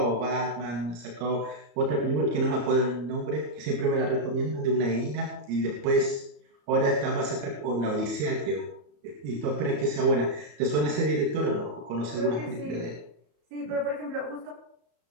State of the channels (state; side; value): late; left; 34 ms